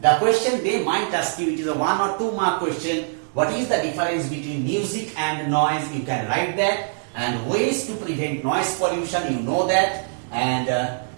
The question they might ask you, it is a 1 or 2 mark question. What is the difference between music and noise? You can write that. And ways to prevent noise pollution, you know that. And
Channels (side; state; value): left; silent; digital silence